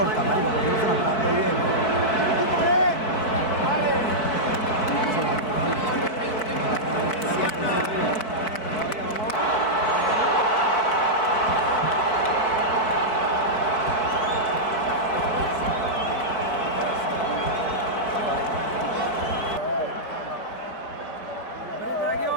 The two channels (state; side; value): late; right; 4.6 ms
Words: marico, porque no se la está dando bien.